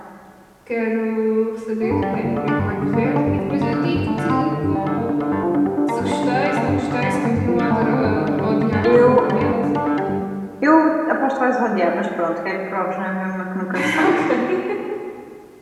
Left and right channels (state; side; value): identical; both; correlation 1.00